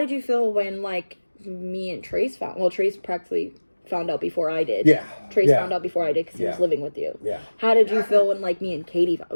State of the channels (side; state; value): both; inverted; correlation -1.00